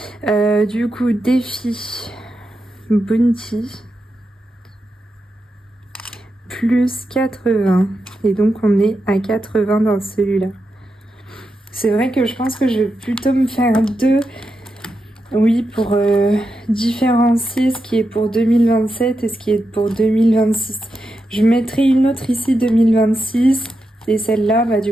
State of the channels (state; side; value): normal; both; correlation 0.87